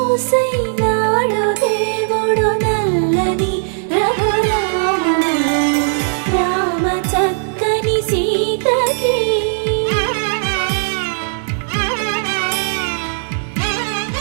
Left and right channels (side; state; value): left; silent; digital silence